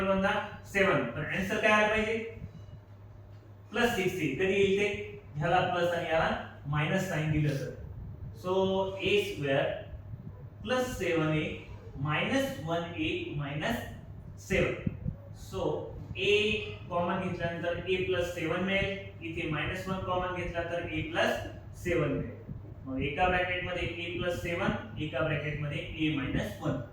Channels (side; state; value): both; identical; correlation 1.00